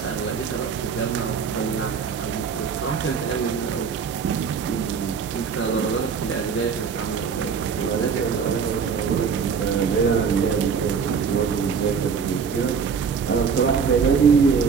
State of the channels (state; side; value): quieter; left; 6.1 dB